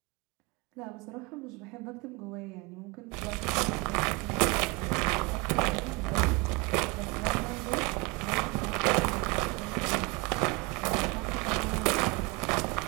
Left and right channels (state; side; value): quieter; left; 27.0 dB